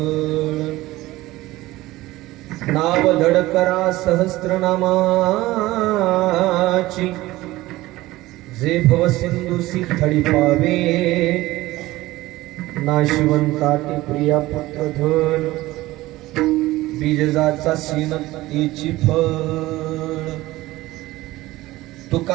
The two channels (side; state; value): left; quieter; 18.0 dB